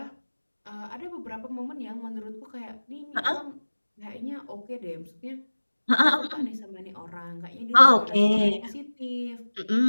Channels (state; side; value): inverted; both; correlation -1.00